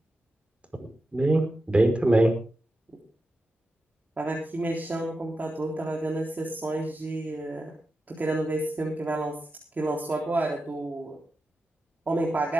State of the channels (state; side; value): normal; both; correlation 0.90